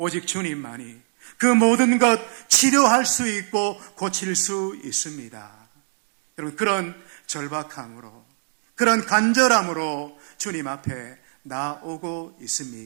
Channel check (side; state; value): left; silent; digital silence